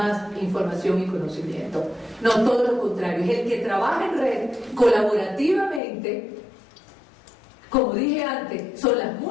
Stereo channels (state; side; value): drops out; right; at 5.8 s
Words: información y conocimiento. No, todo lo contrario. Es el que trabaja en red colaborativamente. Como dije antes, son las